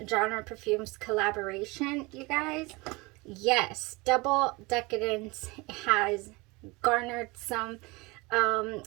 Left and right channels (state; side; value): quieter; left; 24.8 dB